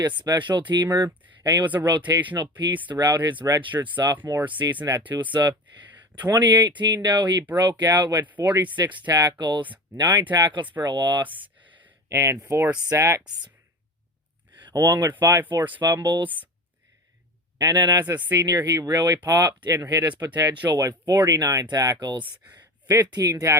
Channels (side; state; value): both; normal; correlation 0.31